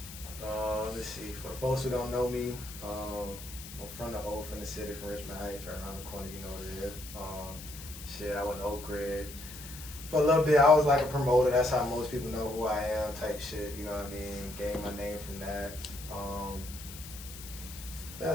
Let's see. For the folks who don't know me, I'm from the city, from Richmond Heights, right around the corner. You know what it is. I went to Oak Ridge. For a little bit, I was like a promoter. That's how most people know who I am, type shit. You know what I mean? Gained my name from that.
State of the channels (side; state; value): left; noise; hiss, 13 dB below the sound